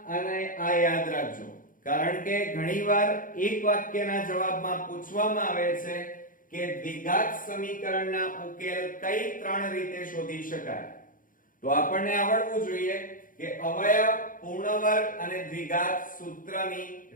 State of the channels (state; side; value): late; right; 0.39 ms